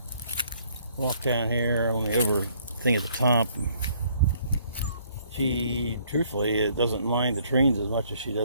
walk down here on the over thing at the top. She, truthfully, it doesn't mind the trains as much as she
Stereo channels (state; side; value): inverted; both; correlation -0.64